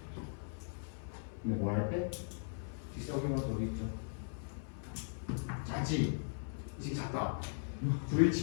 근데 뭐 할 때? 뒷석이면 어디 있죠? 작지? 이게 작다.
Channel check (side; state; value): right; silent; 52 dB below the other